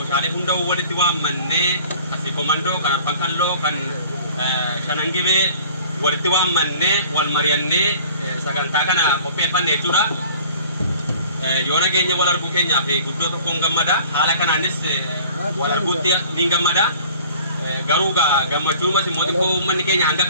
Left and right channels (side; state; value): both; inverted; correlation -0.49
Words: hunda walitti waammannee Sikh Komandoo kan Arfan Kalloo kan Shanangibee walitti waammannee wal mari'annee sagantaa kana qopheeffanne jechuudha. Yoo nageenya wal arguu keenyaaf guddoo tokkoon gammada. Haala kanaanis wal arguutti ni gammada. Garuu gammachuumas immoo xiqqoo uummanni keenya hanga